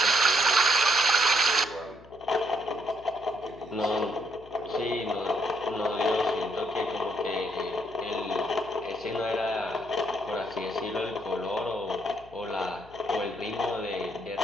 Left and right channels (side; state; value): left; noise; hum, 24 dB below the sound